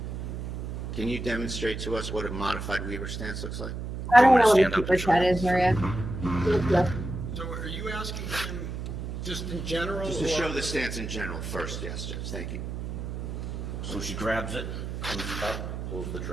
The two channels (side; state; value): right; noise; hum, 6 dB below the sound